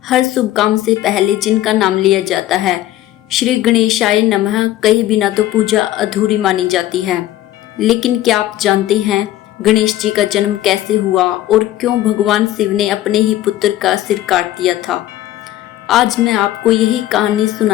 हर शुभ काम से पहले जिनका नाम लिया जाता है, श्री गणेशाय नमः कहे बिना तो पूजा अधूरी मानी जाती है। लेकिन क्या आप जानते हैं गणेश जी का जन्म कैसे हुआ और क्यों भगवान शिव ने अपने ही पुत्र का सिर काट दिया था? आज मैं आपको यही कहानी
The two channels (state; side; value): quieter; right; 14.2 dB